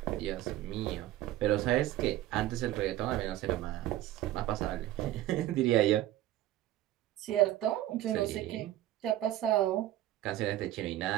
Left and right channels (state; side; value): quieter; left; 14.1 dB